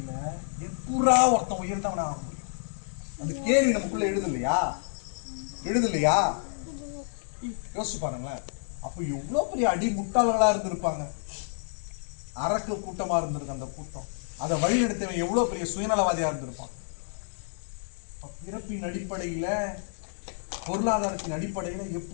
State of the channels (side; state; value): right; silent; 58 dB below the other